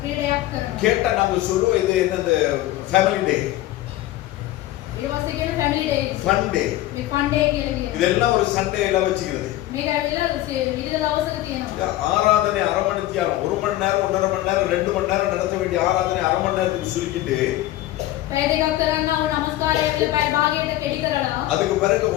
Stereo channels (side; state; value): right; quieter; 15.4 dB